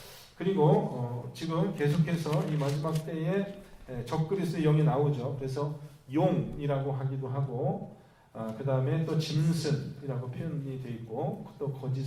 그리고 지금 계속해서 이 마지막 때에 적그리스도의 영이 나오죠. 그래서 용이라고 하기도 하고 그 다음에 또 짐승이라고 표현이 되어 있고 또 거짓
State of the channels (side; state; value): both; identical; correlation 1.00